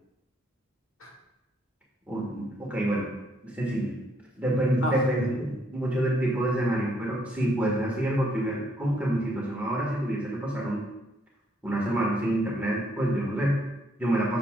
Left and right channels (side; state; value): both; normal; correlation 0.71